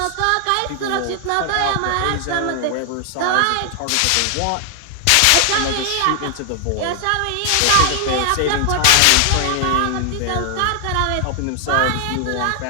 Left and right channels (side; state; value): both; different; correlation 0.00